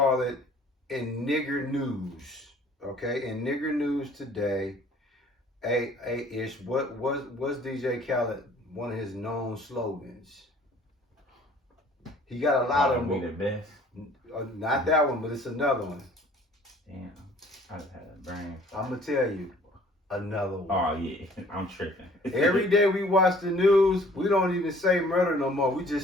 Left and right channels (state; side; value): normal; both; correlation 0.54